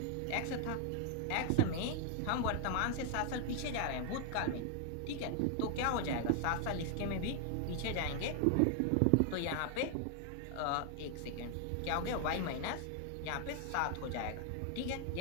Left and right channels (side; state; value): both; different; correlation 0.00